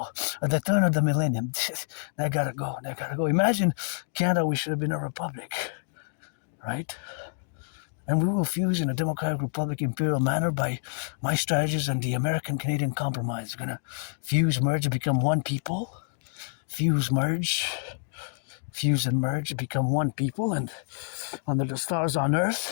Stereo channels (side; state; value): right; silent; digital silence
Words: at the turn of the millennium. That gotta go. Imagine Canada, we should have been a republic, right? And we will fuse in a democratic republic imperial manner by my strategies and the American-Canadian compromise. We're going to fuse, merge, become one people. Fuse, and merge, become one people. And under the stars on